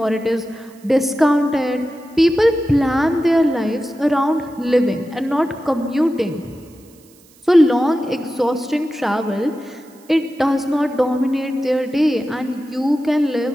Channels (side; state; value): right; noise; hiss, 28 dB below the sound